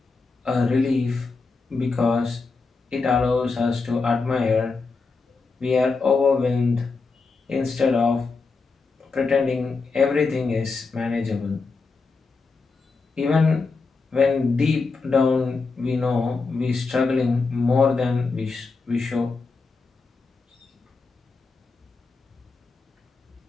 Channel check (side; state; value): right; quieter; 4.3 dB